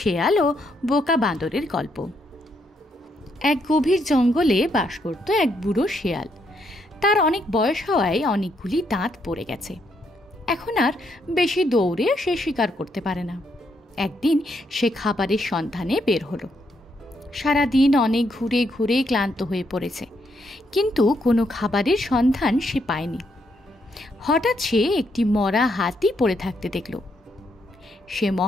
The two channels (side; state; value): both; normal; correlation 0.76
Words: ও বোকা বাঁদরের গল্প। এক গভীর জঙ্গলে বাস করত এক বুড়ো শেয়াল। তার অনেক বয়স হওয়ায় অনেকগুলি দাঁত পড়ে গেছে। এখন আর বেশি দৌড়ে সে শিকার করতে পারে না। একদিন সে খাবারের সন্ধানে বের হলো। সারাদিন অনেক ঘুরে ঘুরে ক্লান্ত হয়ে পড়েছে, কিন্তু কোনো খাবারের সন্ধান সে পায়নি। হঠাৎ সে একটি মরা হাতি পড়ে থাকতে দেখল। সে